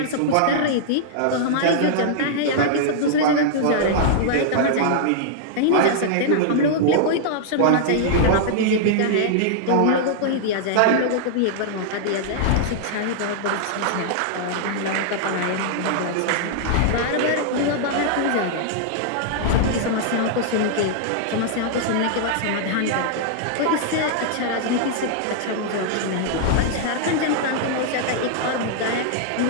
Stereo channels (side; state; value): both; different; correlation -0.01